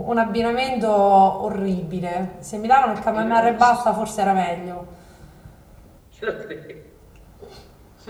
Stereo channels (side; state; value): both; identical; correlation 1.00